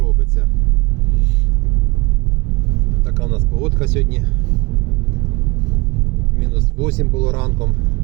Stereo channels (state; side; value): quieter; left; 25.1 dB